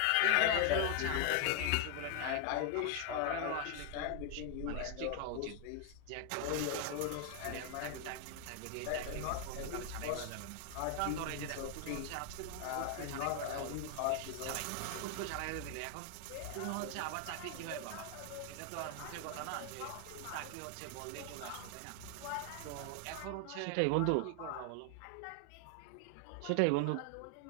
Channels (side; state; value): both; different; correlation 0.00